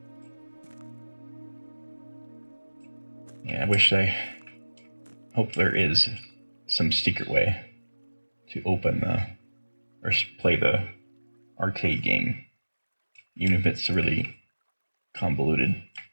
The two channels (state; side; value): inverted; both; correlation -1.00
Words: Yeah, I hope there is some secret way to open or play the arcade game, even if it's a really convoluted